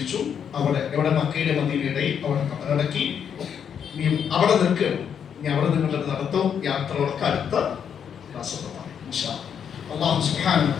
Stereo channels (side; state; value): right; quieter; 7.9 dB